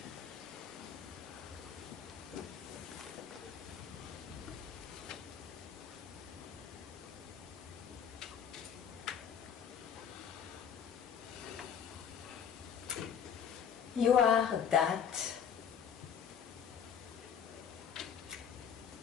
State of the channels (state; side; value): quieter; right; 8.0 dB